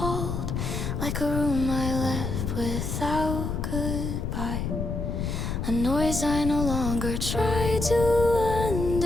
Like a room I left without goodbye. A noise I no longer try to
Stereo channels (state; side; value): noise; left; rumble, 2 dB below the sound